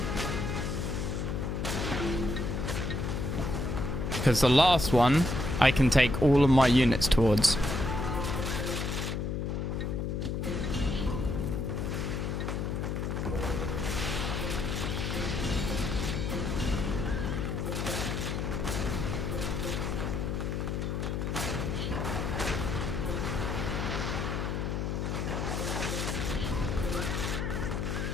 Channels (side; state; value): left; noise; hum, 1 dB below the sound